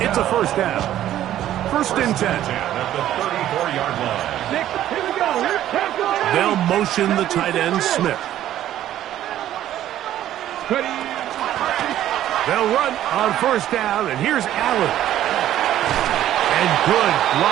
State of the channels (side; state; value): left; quieter; 12.4 dB